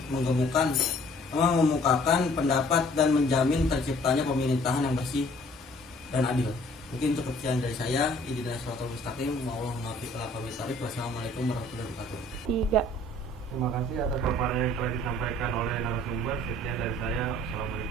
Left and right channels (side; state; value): both; normal; correlation 0.56